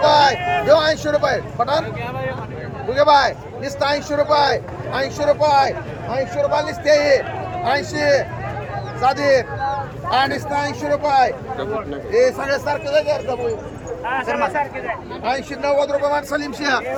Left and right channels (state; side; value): identical; both; correlation 1.00